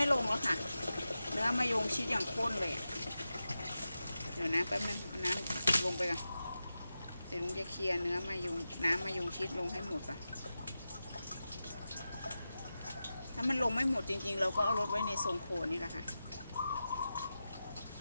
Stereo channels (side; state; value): both; inverted; correlation -0.92